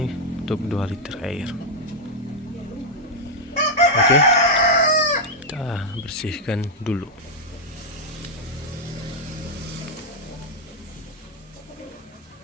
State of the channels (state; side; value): normal; both; correlation -0.02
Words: untuk 2 liter air. Oke, kita bersihkan dulu.